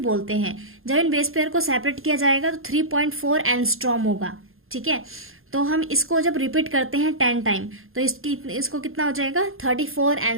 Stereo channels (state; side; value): late; left; 0.61 ms